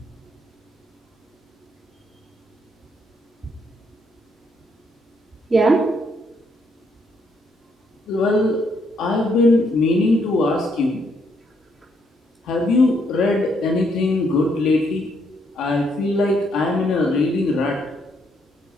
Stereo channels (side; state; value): both; normal; correlation 0.73